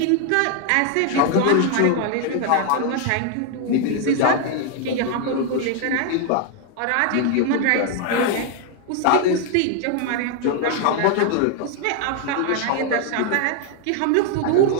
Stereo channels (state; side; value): different; both; correlation 0.00